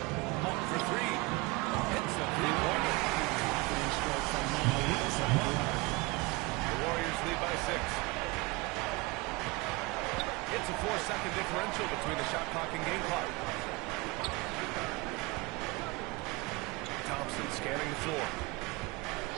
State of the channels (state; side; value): quieter; left; 24.5 dB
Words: Monk for 3. Hits the three-pointer. The Warriors lead by 6. It's a 4-second differential between the shot clock and game clock. Thompson scanning the floor.